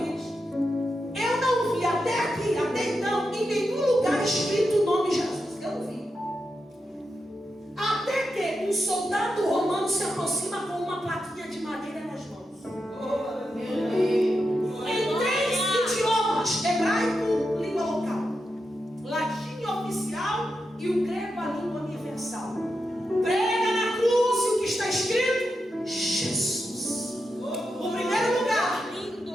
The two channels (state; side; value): normal; both; correlation 0.87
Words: Eu não vi até aqui, até então, em nenhum lugar escrito o nome Jesus. Eu não vi. Até que um soldado romano se aproxima com uma plaquinha de madeira nas mãos. Em 3 idiomas: hebraico, língua local, latim oficial e o grego, a língua universal. Prega na cruz e o que está escrito? Jesus. O primeiro lugar